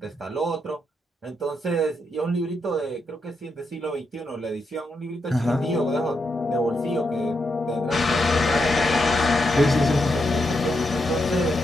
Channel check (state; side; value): normal; both; correlation 0.83